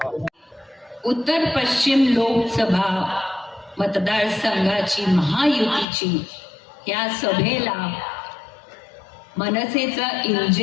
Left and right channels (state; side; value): drops out; right; at 5.9 s